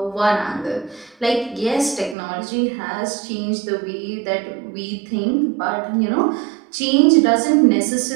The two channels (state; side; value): drops out; left; at 2.1 s